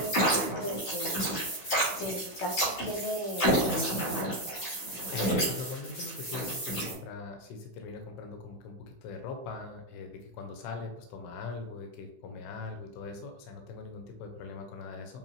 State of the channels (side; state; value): right; late; 15 ms